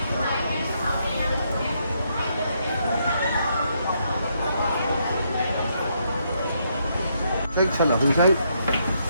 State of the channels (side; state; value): both; inverted; correlation -0.75